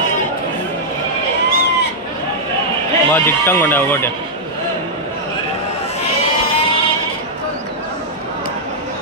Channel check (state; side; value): normal; both; correlation -0.07